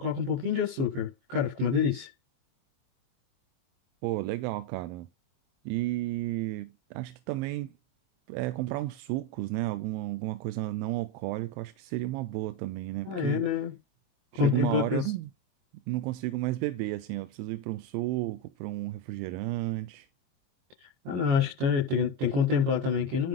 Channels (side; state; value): left; late; 22 ms